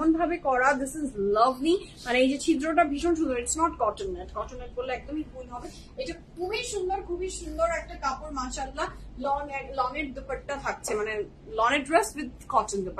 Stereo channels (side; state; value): both; identical; correlation 1.00